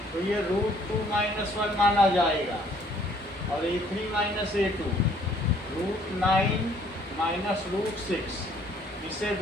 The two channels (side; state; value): both; normal; correlation 0.61